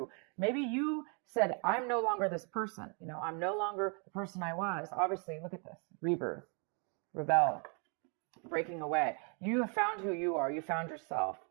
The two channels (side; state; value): left; quieter; 37.5 dB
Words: Maybe you said, I'm no longer this person. I'm no longer the person I was. Obviously, look at this. Rebirth, rebel, breaking away. You have found who you are. You found yourself.